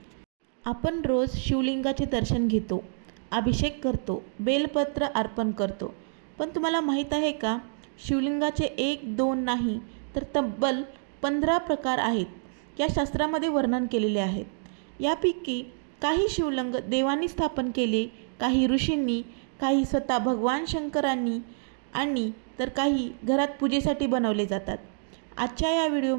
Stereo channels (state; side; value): silent; left; digital silence